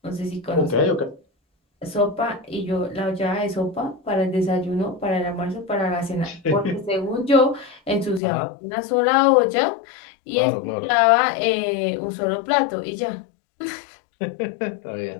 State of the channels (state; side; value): drops out; right; at 8.2 s